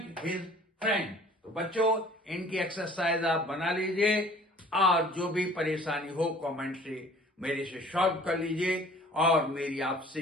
his friend. तो बच्चों, इनकी एक्सरसाइज आप बना लीजिए और जो भी परेशानी हो कमेंट से मेरे से सॉल्व कर लीजिए। और मेरी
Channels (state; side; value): normal; both; correlation 0.51